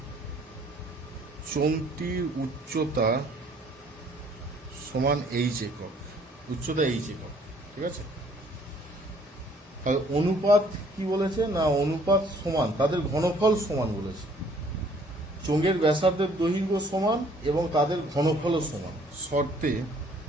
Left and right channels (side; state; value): both; normal; correlation 0.60